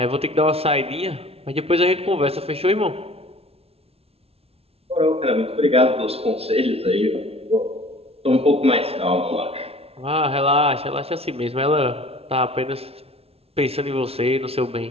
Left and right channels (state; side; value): late; left; 0.29 ms